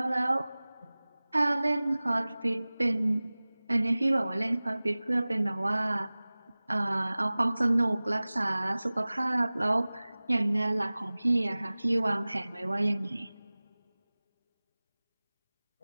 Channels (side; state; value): both; inverted; correlation -0.99